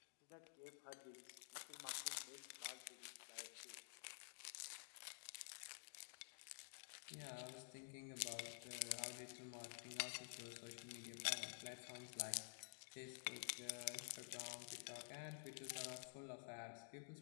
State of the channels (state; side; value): silent; right; digital silence